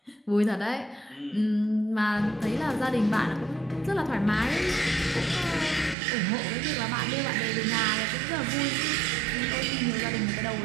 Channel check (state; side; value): drops out; left; at 6.0 s